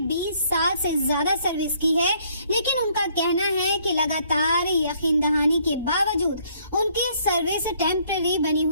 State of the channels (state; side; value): inverted; both; correlation -0.65